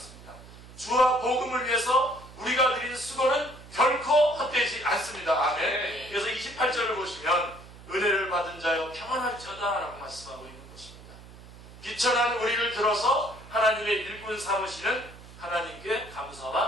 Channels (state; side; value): noise; right; hum, 18 dB below the sound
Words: 주와 복음을 위해서 우리가 드린 수고는 결코 헛되지 않습니다. 아멘. 그래서 28절을 보시면 은혜를 받은 자여 평안할지어다 라고 말씀하고 있는 것입니다. 비천한 우리를 들어서 하나님의 일꾼 삼으시는 하나님께